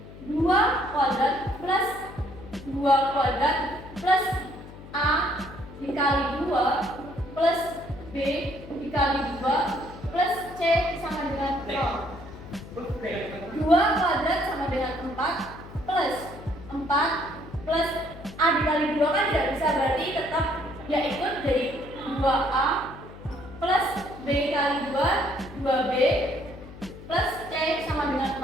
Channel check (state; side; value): noise; left; hum, 16 dB below the sound